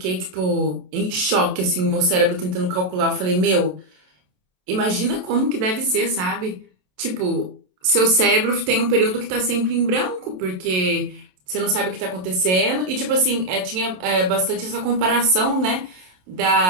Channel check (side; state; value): left; late; 27 ms